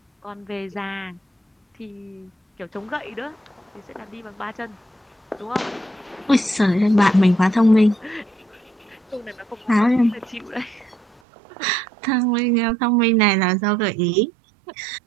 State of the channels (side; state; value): left; drops out; at 11.2 s